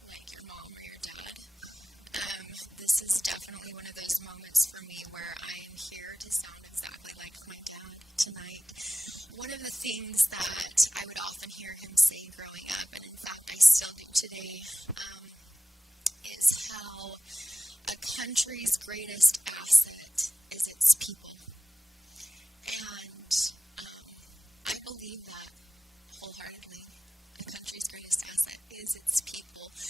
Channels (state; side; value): normal; both; correlation 0.94